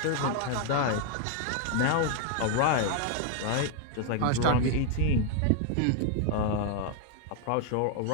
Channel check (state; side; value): different; both; correlation 0.00